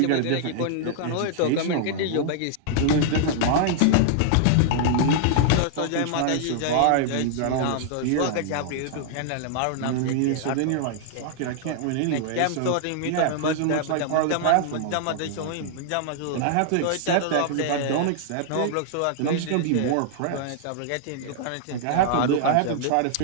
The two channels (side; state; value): both; different; correlation -0.01